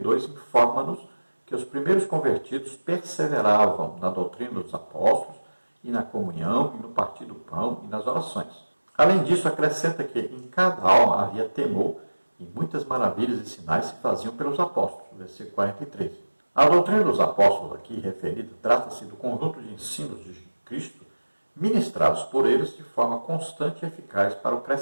informa-nos que os primeiros convertidos perseveravam na doutrina dos apóstolos e na comunhão e no partir do pão e nas orações. Além disso, acrescenta que em cada alma havia temor e muitas maravilhas e sinais se faziam pelos apóstolos. Versículo 43. A doutrina dos apóstolos aqui referida trata-se do conjunto de ensinos de Cristo ministrados por eles de forma constante e eficaz para o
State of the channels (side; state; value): both; inverted; correlation -1.00